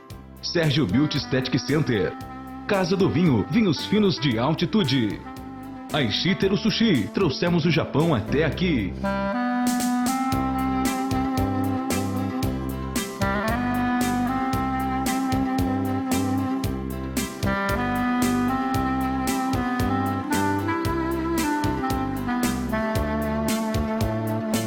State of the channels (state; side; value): identical; both; correlation 1.00